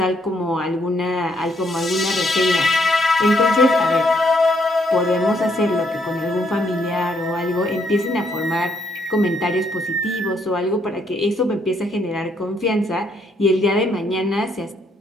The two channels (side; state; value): both; normal; correlation 0.72